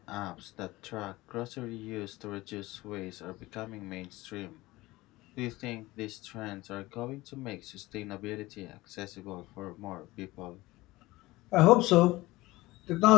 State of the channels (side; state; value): right; quieter; 19.5 dB